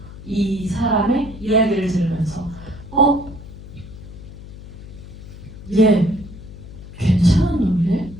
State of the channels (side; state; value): left; noise; hum, 15 dB below the sound